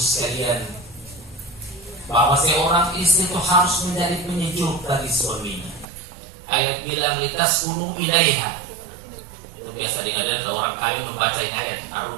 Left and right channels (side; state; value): left; drops out; at 5.9 s